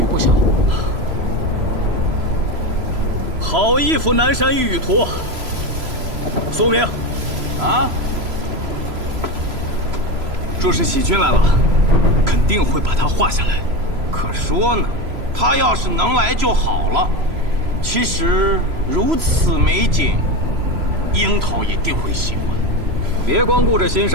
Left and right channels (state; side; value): late; left; 3.0 ms